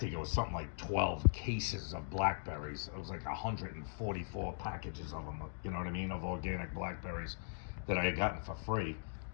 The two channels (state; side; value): silent; right; digital silence